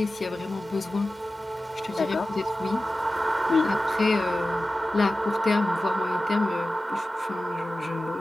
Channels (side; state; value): both; normal; correlation 0.95